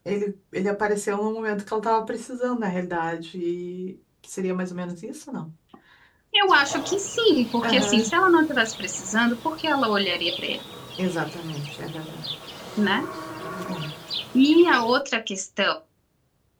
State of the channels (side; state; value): both; identical; correlation 1.00